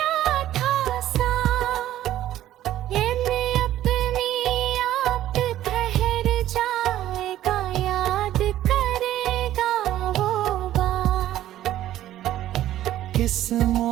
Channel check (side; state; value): left; quieter; 13.2 dB